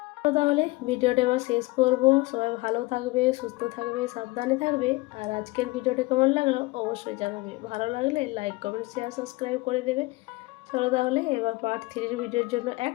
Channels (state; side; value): quieter; right; 22.3 dB